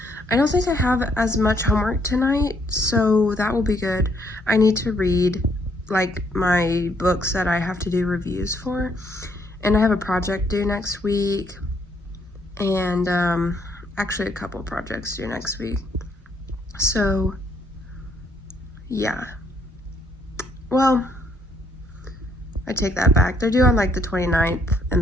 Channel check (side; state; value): both; normal; correlation 0.69